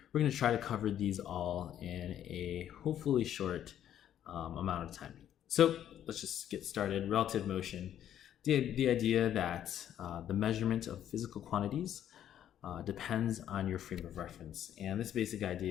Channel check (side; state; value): right; quieter; 10.6 dB